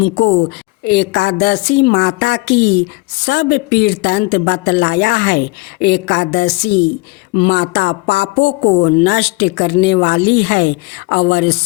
एकादशी माता की सब वृत्तांत बतलाया है। एकादशी माता पापों को नष्ट करने वाली है और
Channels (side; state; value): right; quieter; 23.9 dB